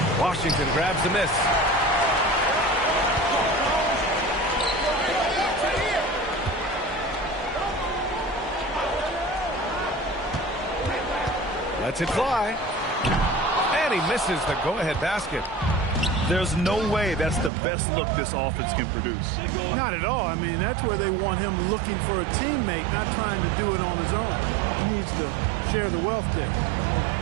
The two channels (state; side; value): drops out; left; at 17.5 s